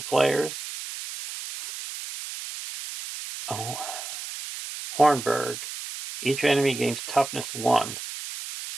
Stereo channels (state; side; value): noise; right; hiss, 9 dB below the sound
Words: players. Oh. Hornburg. Each enemy gains toughness 1.